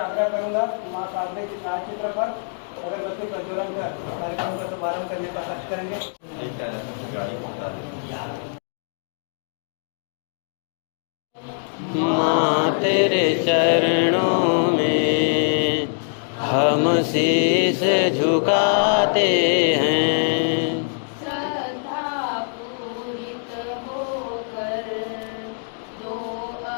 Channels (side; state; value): right; silent; digital silence